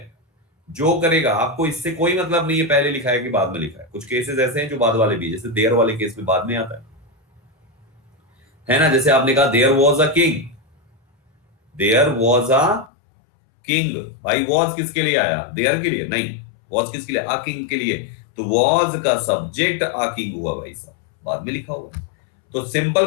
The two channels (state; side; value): drops out; right; at 12.9 s